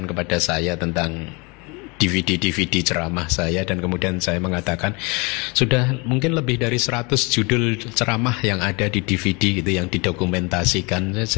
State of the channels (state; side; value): quieter; right; 28.8 dB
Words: kepada saya tentang DVD ceramah saya, dan kemudian saya mengatakan sudah mungkin lebih dari 100 judul ceramah yang ada di DVD gitu yang didokumentasikan.